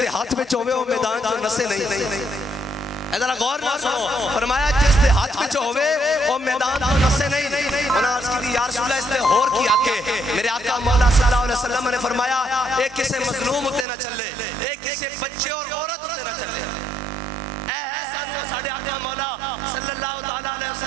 ہاتھ میں چوہے وہ میدان جو نسے نہیں. ادھر غور نہ سنو. فرمایا جس دے ہاتھ میں ہوئے وہ میدان تو نسے نہیں. انہوں نے عرض کی تھی یا رسول اللہ اس نے اور کی آکے. میرے آقا مولا صلی اللہ علیہ وسلم نے فرمایا ایک کسے مظلوم ہوتے نہ چلے, ایک کسے بچے اور عورت ہوتے نہ چلے. اے سانو ساڑھے آقا مولا صلی اللہ تعالیٰ علیہ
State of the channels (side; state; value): left; drops out; at 13.9 s